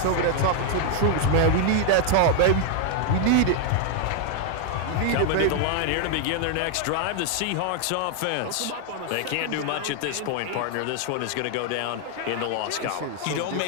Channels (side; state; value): both; different; correlation 0.00